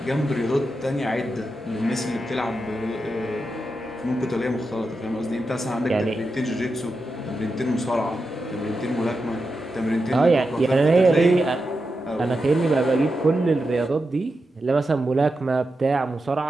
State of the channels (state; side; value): normal; both; correlation 0.89